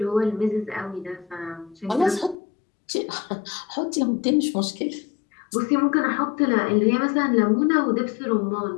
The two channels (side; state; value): right; drops out; at 2.4 s